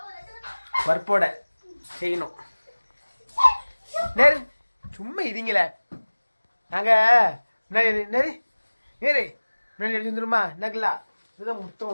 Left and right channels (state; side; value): inverted; both; correlation -1.00